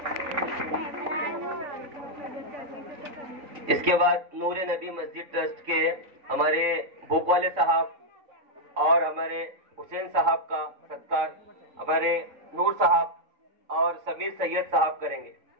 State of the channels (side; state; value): left; late; 3.5 ms